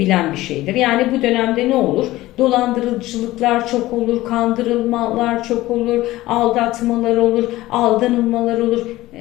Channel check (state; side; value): quieter; right; 17.1 dB